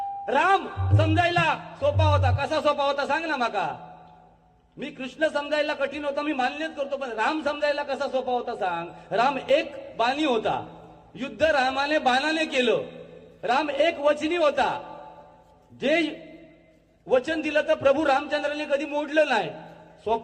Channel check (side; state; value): both; identical; correlation 1.00